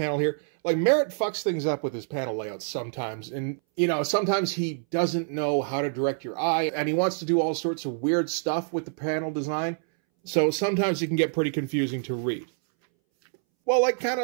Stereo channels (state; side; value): silent; left; 61 dB below the other